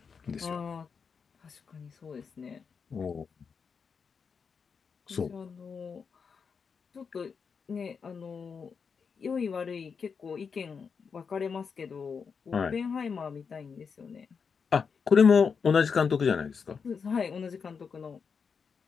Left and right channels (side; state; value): right; quieter; 5.9 dB